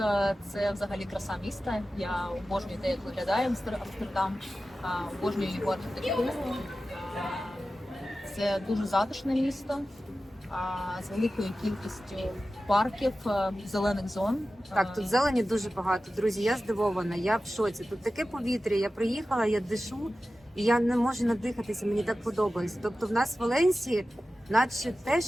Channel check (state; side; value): normal; both; correlation 0.94